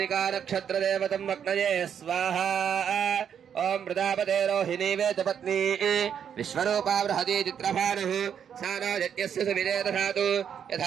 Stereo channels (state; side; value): quieter; left; 8.2 dB